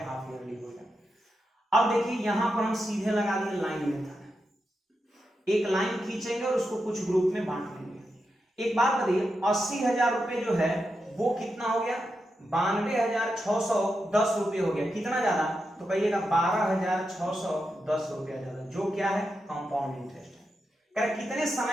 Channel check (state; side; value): normal; both; correlation 0.87